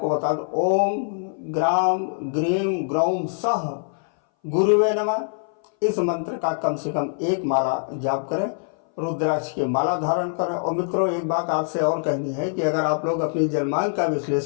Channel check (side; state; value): right; silent; 60 dB below the other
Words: बता दूं, ओम ग्राम ग्रीम ग्रौम सह गुरुवे नमः। इस मंत्र का कम से कम 1 माला जाप करें, रुद्राक्ष की माला धारण करें। और मित्रों, एक बात आपसे और कहनी है कि अगर आप लोग अपनी जन्मांक का